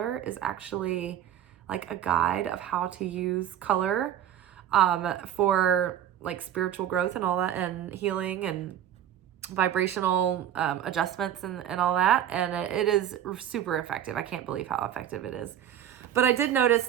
is actually like a guide of how to use color for like spiritual growth and all that, and healing and vibrational adjustments and all that. And it is super effective. I can't believe how effective it is. But I did notice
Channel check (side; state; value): left; quieter; 10.5 dB